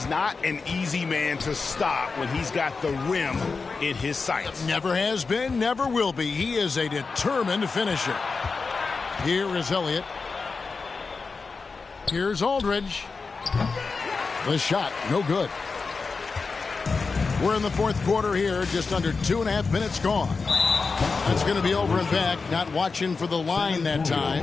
not an easy man to stop when he's got the rim in his sights. Never has been, never will be. He is a determined finisher. Here is Elliott. Here's Aldridge. The shot, no good. We're in the 4th quarter here, just under 2.5 minutes gone. That's going to be over and back, not watching for the line that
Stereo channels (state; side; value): quieter; right; 4.5 dB